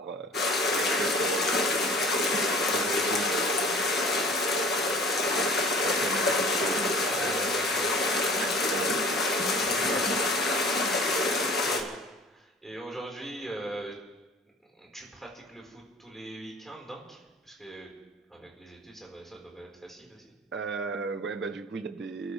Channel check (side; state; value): both; normal; correlation 0.46